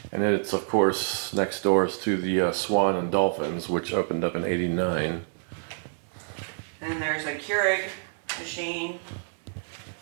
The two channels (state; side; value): silent; left; digital silence